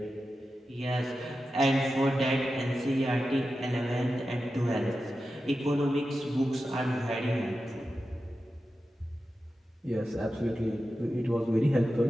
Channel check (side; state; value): both; normal; correlation 0.92